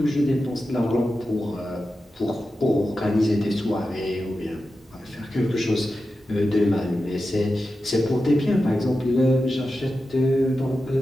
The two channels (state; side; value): normal; both; correlation 0.91